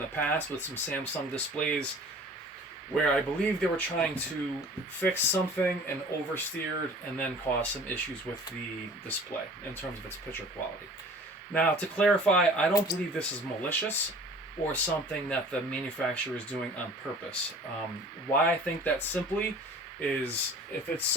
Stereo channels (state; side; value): normal; both; correlation 0.46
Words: past with some Samsung displays where I believe they were trying to fix something and oversteered and then caused some issues with the display in terms of its picture quality. Now, to clarify, I don't believe this is malicious or something that the manufacturer is doing on purpose. Why I think that simply is if it's